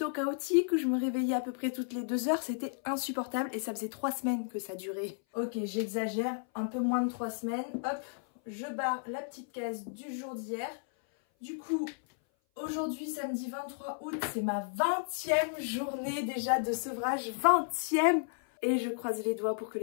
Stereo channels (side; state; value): right; silent; 56 dB below the other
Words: chaotiques où je me réveillais à peu près toutes les 2 heures, c'était insupportable et ça faisait 3 semaines que ça durait. Ok, j'exagère, un peu moins de 3 semaines, hop. Je barre la petite case du jour d'hier. Du coup, aujourd'hui, samedi 23 août, c'est ma 20e journée déjà de sevrage. 20e! Et je croise les doigts pour que